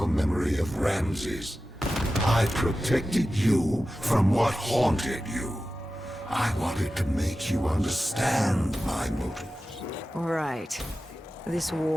memory of Ramses. I protected you from what haunted you. I wanted to make you understand my motives. Right. This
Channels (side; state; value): both; normal; correlation 0.94